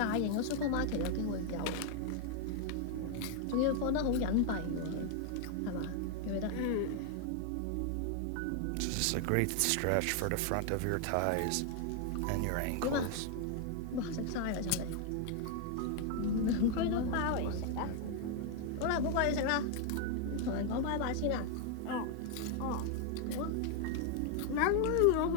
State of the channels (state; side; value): different; both; correlation 0.00